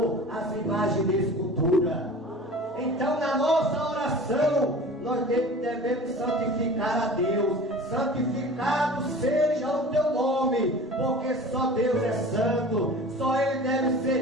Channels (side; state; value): both; normal; correlation 0.40